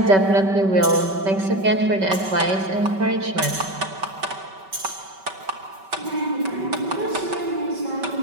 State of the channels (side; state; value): left; late; 5.2 ms